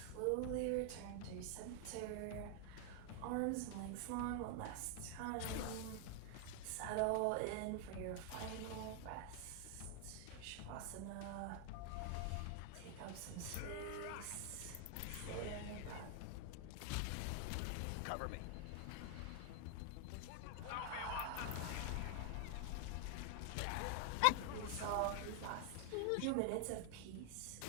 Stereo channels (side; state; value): both; different; correlation 0.00